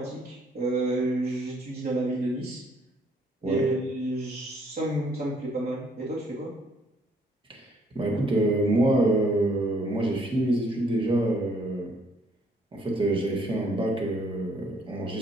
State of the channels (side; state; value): both; normal; correlation 0.65